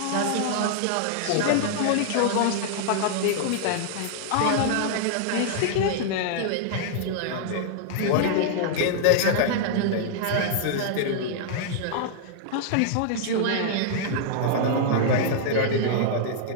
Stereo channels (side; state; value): both; different; correlation -0.01